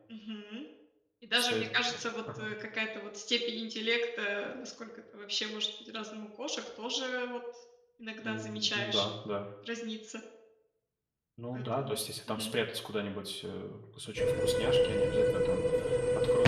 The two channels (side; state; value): both; identical; correlation 1.00